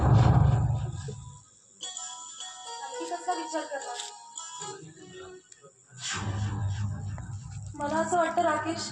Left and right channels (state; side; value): identical; both; correlation 1.00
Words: कसा विचार करणार? मला असं वाटतं राकेश,